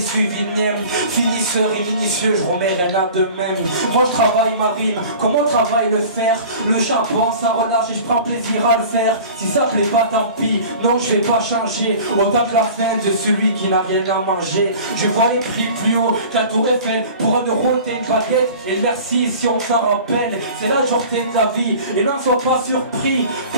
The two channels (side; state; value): both; inverted; correlation -0.42